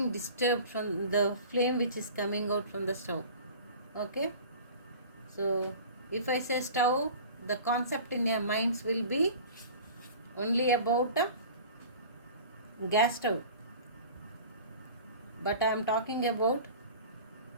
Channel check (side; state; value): both; inverted; correlation -0.40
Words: disturbed from the flame which is coming out from the stove. Okay, so if I say stove, the concept in your minds will be only about a gas stove, but I am talking about